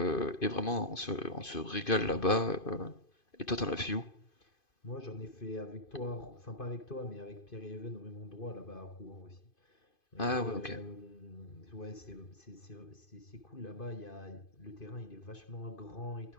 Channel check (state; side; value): late; right; 2.5 ms